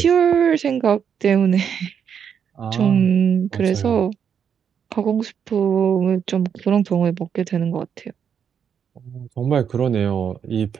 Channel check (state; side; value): quieter; left; 7.7 dB